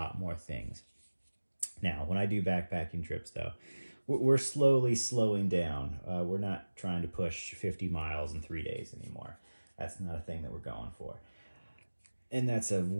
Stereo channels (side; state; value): both; inverted; correlation -1.00